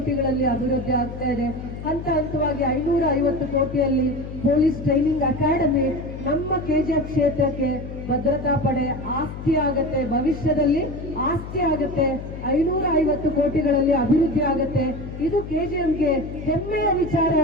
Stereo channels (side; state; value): left; noise; hum, 10 dB below the sound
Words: ಅಭಿವೃದ್ಧಿ ಆಗ್ತಾ ಇದೆ. ಹಂತವಾಗಿ 550 ಕೋಟಿಯಲ್ಲಿ ಪೊಲೀಸ್ ಟ್ರೈನಿಂಗ್ ಅಕಾಡೆಮಿ ನಮ್ಮ ಕೆಜಿಎಫ್ ಕ್ಷೇತ್ರಕ್ಕೆ ಭದ್ರತಾ ಪಡೆ ಆಸ್ತಿ ಆಗತ್ತೆ, ಭವಿಷ್ಯದಲ್ಲಿ ಆಸ್ತಿ ಆಗತ್ತೆ. 550 ಕೋಟಿಗಳಲ್ಲಿ ಅಭಿವೃದ್ಧಿ ಆಗತ್ತೆ. ಇದು ಕೆಜಿಎಫ್ಗೆ ಹೆಮ್ಮೆಯ ವಿಚಾರ